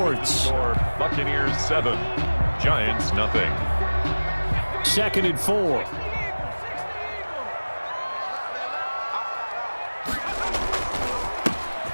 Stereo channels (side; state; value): both; inverted; correlation -1.00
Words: Buccaneers 7, Giants nothing. 2nd and 4.